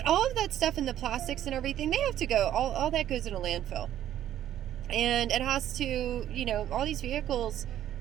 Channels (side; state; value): left; quieter; 11.6 dB